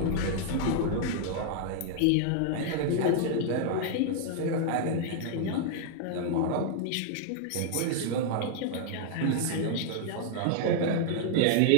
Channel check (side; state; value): both; different; correlation -0.01